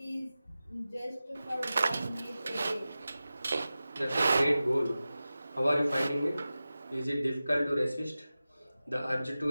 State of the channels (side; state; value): both; inverted; correlation -0.95